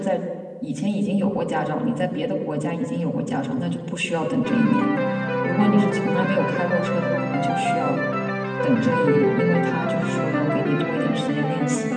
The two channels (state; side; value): identical; both; correlation 1.00